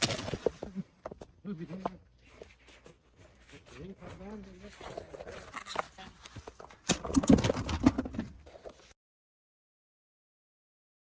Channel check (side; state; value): both; identical; correlation 1.00